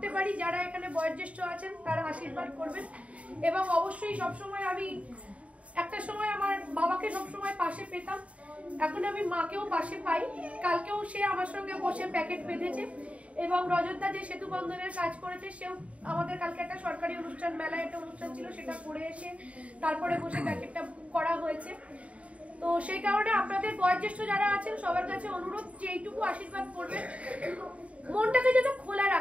পারি, যারা এখানে বয়োজ্যেষ্ঠ আছেন তারা আশীর্বাদ করবেন। এবং অবশ্যই সবসময় আমি একটা সময় আমার বাবাকে সবসময় পাশে পেতাম, এখন আমি মাকেও পাশে পাই। কালকেও সে আমার সঙ্গে বসে প্যাকেট বেঁধেছে, এবং রজতদা যে সেতু বন্ধনের কাজ করেছে সেও আমাদের কালকে একটা সরকারি অনুষ্ঠান, মেলায় একটা অনুষ্ঠান ছিল, সেটা করে এসে তারপরে বসে প্যাকেটটা করা হয়েছে। তো সেই কারণে আপনাদের বয়োজ্যেষ্ঠ যারা আছেন সবার কাছে অনুরোধ যে এইটুকু আশীর্বাদ করবেন, মনটাকে যেন খোলা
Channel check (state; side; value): late; left; 0.065 ms